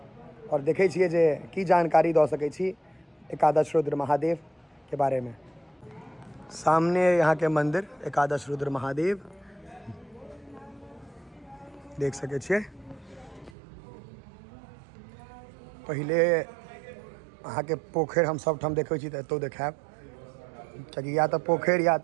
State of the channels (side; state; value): left; drops out; at 13.6 s